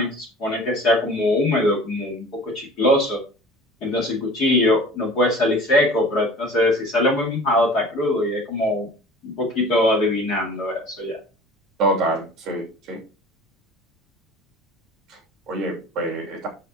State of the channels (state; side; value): normal; both; correlation 0.43